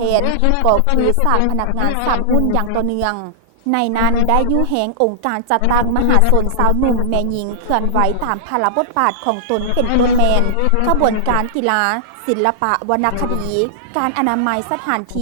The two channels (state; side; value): different; both; correlation -0.01